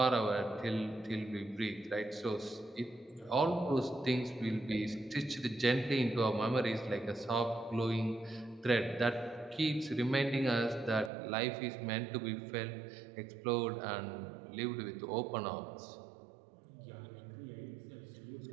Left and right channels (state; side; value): drops out; left; at 11.1 s